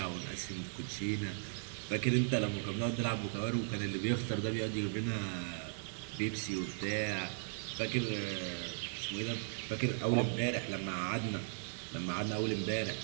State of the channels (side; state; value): left; silent; digital silence